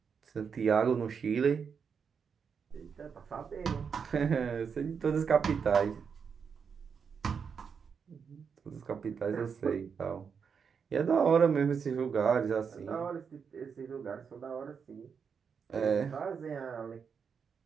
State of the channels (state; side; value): quieter; left; 6.4 dB